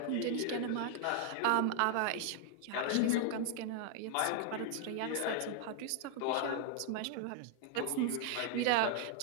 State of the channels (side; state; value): both; different; correlation 0.00